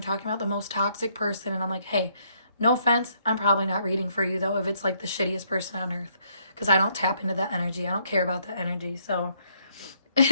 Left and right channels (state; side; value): inverted; both; correlation -0.70